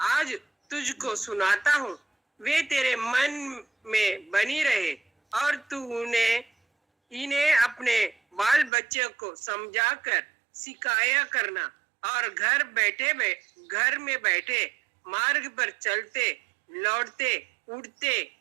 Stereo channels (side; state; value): left; drops out; at 8.7 s